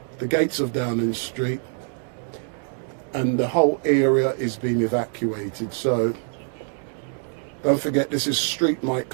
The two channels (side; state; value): left; silent; 56 dB below the other